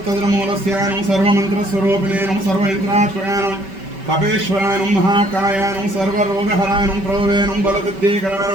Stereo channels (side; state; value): left; late; 5.2 ms